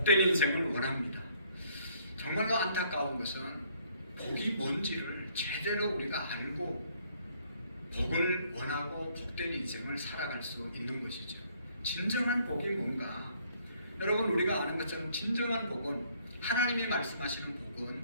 인생을 원합니다. 정말로 안타까운 것은 복이 뭔지를 제대로 우리가 알고 복을 원하고 복된 인생을 살아갈 수 있는 것이죠. 진정한 복이 뭔가? 여러분 우리가 아는 것처럼 진정한 복은 하나님이 말씀하시는 복은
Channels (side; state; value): both; inverted; correlation -0.65